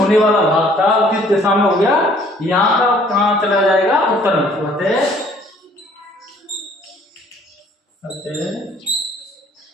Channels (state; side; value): normal; both; correlation 0.59